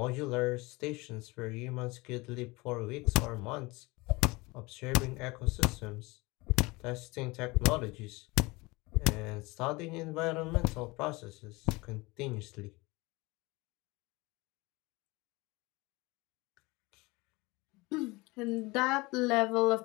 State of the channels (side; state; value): right; quieter; 23.6 dB